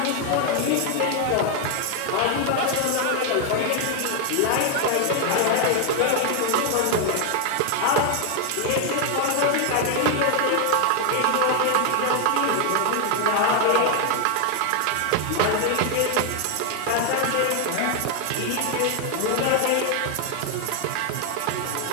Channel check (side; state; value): both; different; correlation 0.01